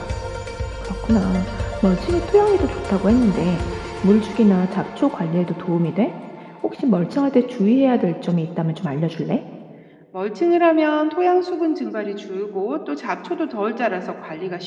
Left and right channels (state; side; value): identical; both; correlation 1.00